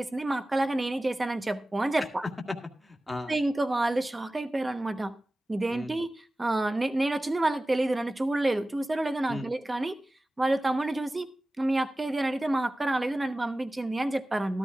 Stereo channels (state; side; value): normal; both; correlation 0.96